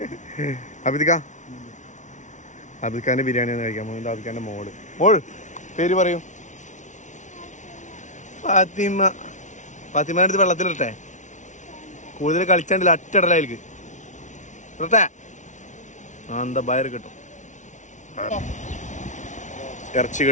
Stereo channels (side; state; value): right; late; 0.36 ms